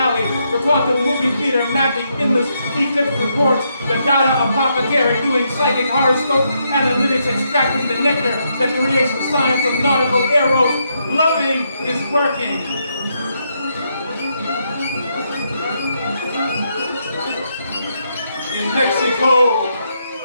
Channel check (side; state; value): both; inverted; correlation -0.78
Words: the quantum movie theater mapping endless eclipse reports, the data apothecary doing psychic horoscope analytics extracting the nectar that creates the science of nautical arrows. Loving is working. In Mexico,